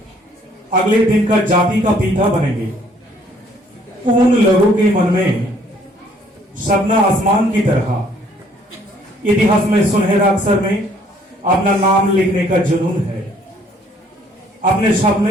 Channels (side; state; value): both; normal; correlation 0.62